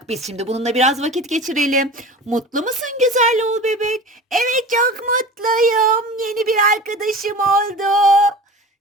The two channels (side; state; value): both; normal; correlation 0.35